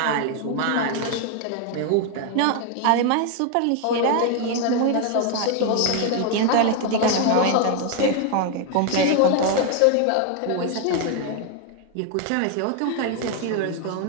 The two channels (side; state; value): both; different; correlation 0.01